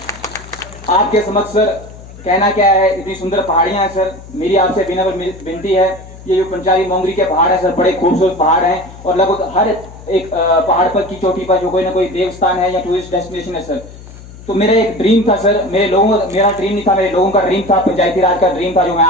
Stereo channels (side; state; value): left; noise; hum, 17 dB below the sound